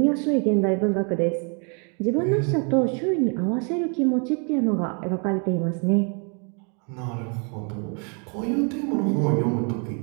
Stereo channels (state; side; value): quieter; left; 37.7 dB